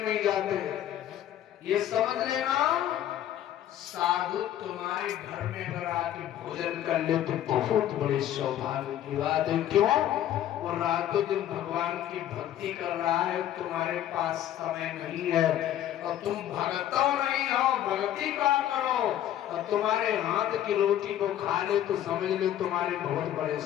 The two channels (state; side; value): quieter; right; 11.7 dB